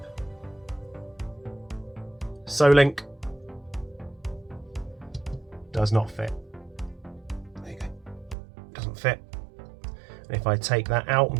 Solink does not fit. There you go. Doesn't fit. And if I take that out and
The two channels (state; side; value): drops out; left; at 8.3 s